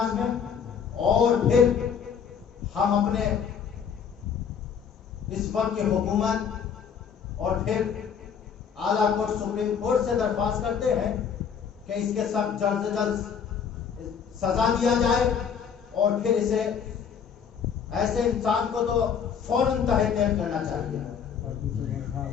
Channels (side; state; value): right; quieter; 7.2 dB